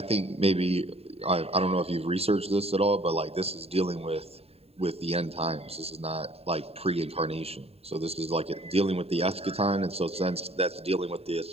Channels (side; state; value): left; late; 0.29 ms